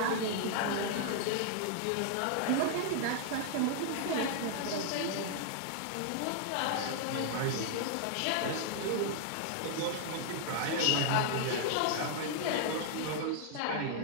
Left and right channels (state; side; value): different; both; correlation 0.00